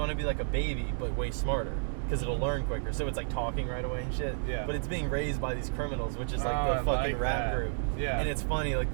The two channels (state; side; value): silent; left; digital silence